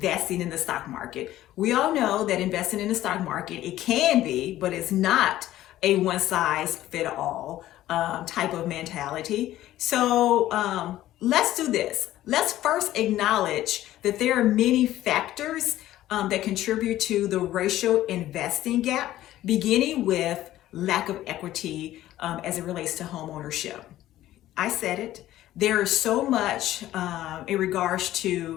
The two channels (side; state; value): right; quieter; 14.2 dB